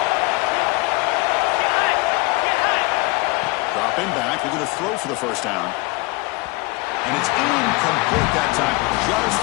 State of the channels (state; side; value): quieter; right; 24.4 dB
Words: Drop him back. Looking to throw for the first down. And it's incomplete that time, just